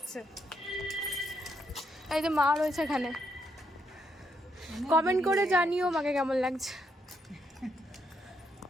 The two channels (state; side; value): normal; both; correlation 0.77